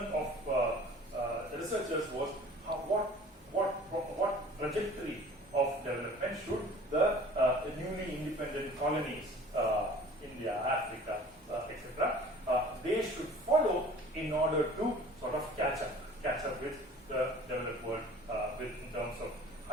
of researchers was what trajectory of development should the newly independent colonies, India, Africa, etc., they should follow in order to sort of catch up with the developed world in terms of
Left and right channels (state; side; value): normal; both; correlation 0.46